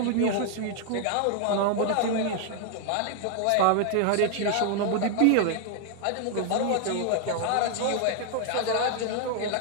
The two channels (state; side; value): different; both; correlation 0.00